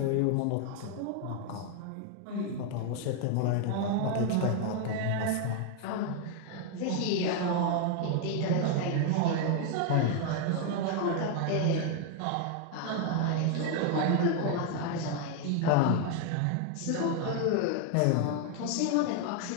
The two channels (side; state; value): both; different; correlation 0.00